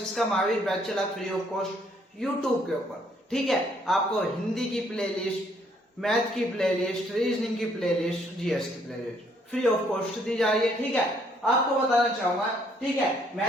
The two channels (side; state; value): both; normal; correlation 0.67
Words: का महावीर बैच चला फ्री ऑफ कॉस्ट यूट्यूब के ऊपर। ठीक है, आपको हिंदी की प्ले लिस्ट, मैथ की प्ले लिस्ट, रीजनिंग की प्ले लिस्ट, जीएस की playlist free of cost दी जा रही है। ठीक है, आपको बताना चाहूंगा, ठीक है,